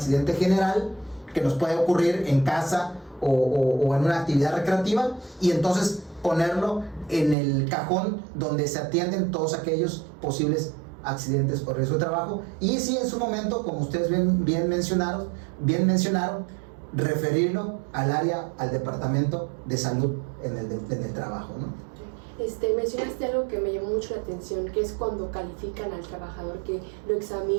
general que nos puede ocurrir en casa o en una actividad recreativa, y entonces ponerlo en el cajón donde se atienden todos aquellos posibles accidentes o riesgo de trabajo. Y sí, en su momento, como ustedes bien mencionaron, referirlo al departamento de salud en el trabajo, ¿no? Mencionaste algo que me llamó mucho la atención, que es cuando califican al trabajador, que lo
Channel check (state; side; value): drops out; left; at 7.4 s